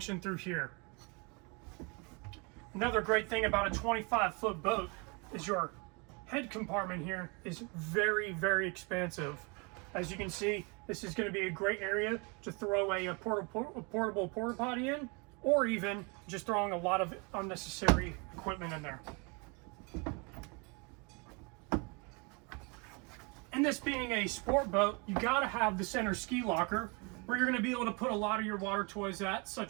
through here. Another great thing about a 25-foot boat is your head compartment here is very expansive. As you can see, this is going to be a great area to throw a portable porta potty in, or even just throwing a lot of unnecessary equipment in there. And this being a sport boat, you gotta have the center ski locker, where you're going to be able to put a lot of your water toys at,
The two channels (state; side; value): quieter; left; 31.1 dB